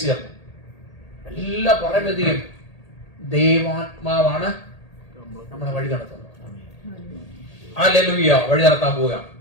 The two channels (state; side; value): late; right; 1.8 ms